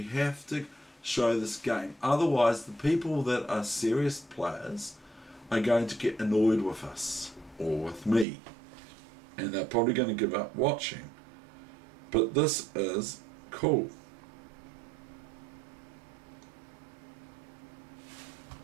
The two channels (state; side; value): drops out; left; at 8.2 s